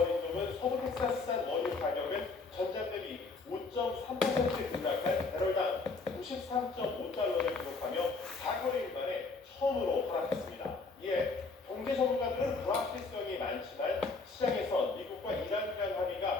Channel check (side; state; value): right; quieter; 4.0 dB